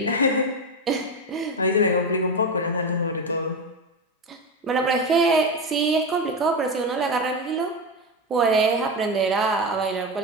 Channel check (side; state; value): both; normal; correlation 0.17